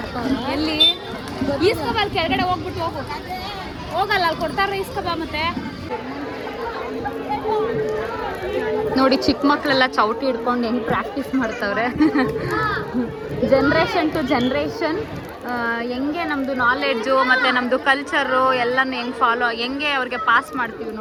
ಎಲ್ಲಿ ಈಸ್ಕಬ, ಅಲ್ಲಿ ಕೆಳಗಡೆ ಹೋಗ್ಬಿಟ್ಟು ಹೋಗಲ್ಲ, ಅಲ್ಲಿ ಕೊಡ್ತಾರ ಈಸ್ಕಬ. ಮತ್ತೆ ನೋಡಿ ಚಿಕ್ಕ ಮಕ್ಕಳೆಲ್ಲ ಚೌಟಿ ಹಿಡ್ಕೊಂಡು ಹೆಂಗೆ ಪ್ರಾಕ್ಟೀಸ್ ಮಾಡ್ತವ್ರೆ. ಜನ್ರೇಷನ್ ಟು ಜನ್ರೇಷನ್ ಹೆಂಗೆ ನಮ್ಮದು ನಾಲೆಡ್ಜು ಮತ್ತು ನಮ್ಮದು ಕಲ್ಚರು ಎಲ್ಲನೂ ಹೆಂಗೆ ಫಾಲೋ, ಹೆಂಗೆ ಅವ್ರಿಗೆ ಪಾಸ್ ಮಾಡ್ತೀವಿ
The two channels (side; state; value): both; identical; correlation 1.00